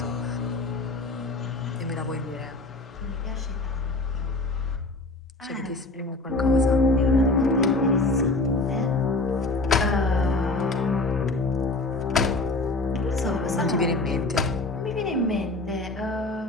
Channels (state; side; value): quieter; right; 3.0 dB